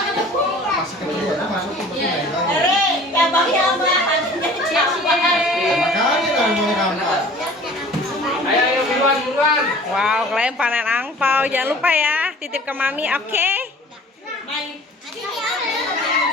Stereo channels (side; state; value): both; normal; correlation 0.47